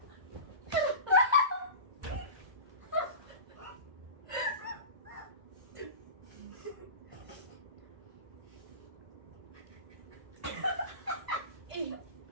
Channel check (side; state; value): left; late; 1.5 ms